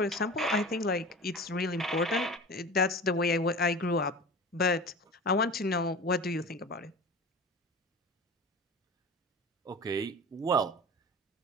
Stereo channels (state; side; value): normal; both; correlation 0.35